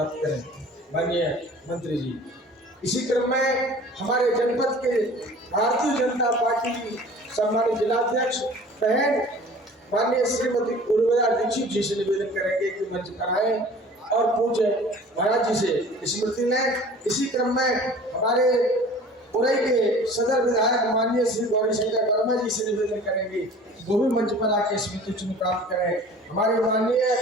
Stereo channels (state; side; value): normal; both; correlation 0.45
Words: करें। माननीय मंत्री जी, इसी क्रम में हमारे जनपद के भारतीय जनता पार्टी की सम्मानित जिलाध्यक्ष बहन माननीय श्रीमती उर्मिला दीक्षित जी से निवेदन करेंगे कि मंच पर आए और पूज्य महाराज जी से स्मृति लें। इसी क्रम में हमारे उरई के सदर विधायक माननीय श्री गौरी शंकर वर्मा जी से निवेदन करेंगे वो भी मंच पर आके स्मृति चिन्ह प्राप्त करें। हमारे